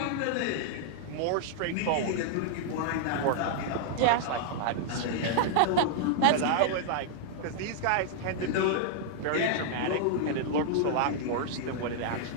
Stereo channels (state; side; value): different; both; correlation -0.01